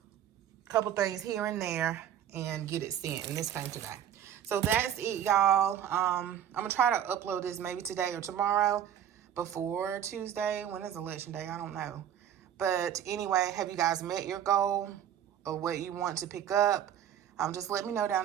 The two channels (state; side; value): quieter; left; 10.0 dB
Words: a couple things here and there, and get it sent. And this came today. So that's it, y'all. I'm gonna try to upload this maybe today or tomorrow before Tuesday. When is election day? I don't know. But anyway, have you guys met your goal of what you want to pick up? Just let me know down